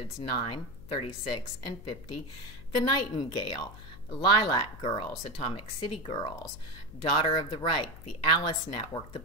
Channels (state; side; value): noise; left; hum, 16 dB below the sound